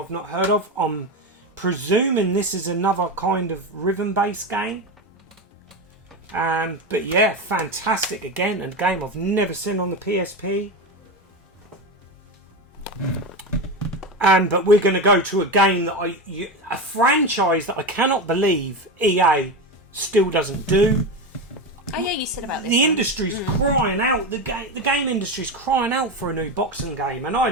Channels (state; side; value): normal; both; correlation 0.19